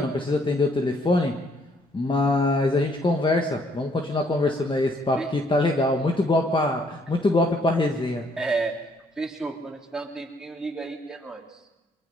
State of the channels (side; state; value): both; normal; correlation 0.67